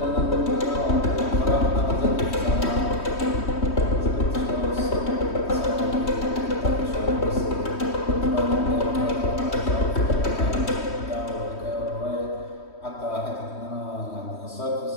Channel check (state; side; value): late; right; 3.2 ms